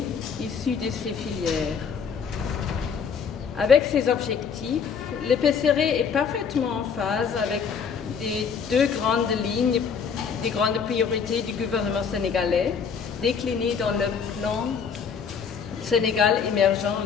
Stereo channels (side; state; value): right; quieter; 6.4 dB